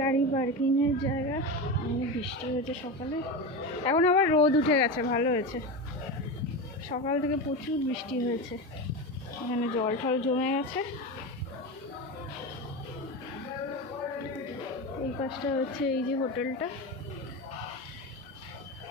গাড়ি পার্কিংয়ের জায়গা। অনেক বৃষ্টি হয়েছে সকালে, এখন আবার রোদ উঠে গেছে, ভালো হয়েছে। সকাল থেকে প্রচুর বৃষ্টি হয়েছে, এখানে জল টল জমে গেছে। এই পাশটা হচ্ছে এই যে হোটেলটা,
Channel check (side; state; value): both; normal; correlation 0.21